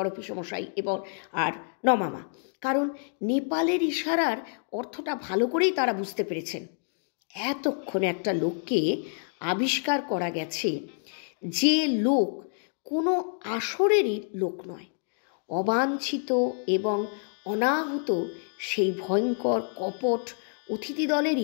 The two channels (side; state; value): right; silent; 59 dB below the other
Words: পিসেমশাই এবং আর নমামা, কারণ নেপালের ইশারার অর্থটা ভালো করেই তারা বুঝতে পেরেছেন। এতক্ষণে একটা লোককে আবিষ্কার করা গেছে যে লোক কোনো আসরেরই লোক নয়, অবাঞ্ছিত এবং অনাহুত সেই ভয়ঙ্কর কপট অতিথি